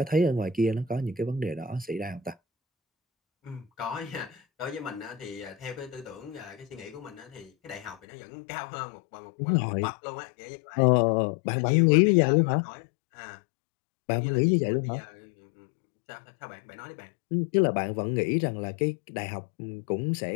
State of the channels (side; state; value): right; drops out; at 8.0 s